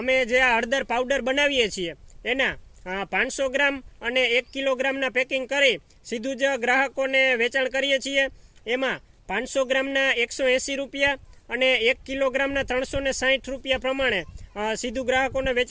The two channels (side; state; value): both; identical; correlation 1.00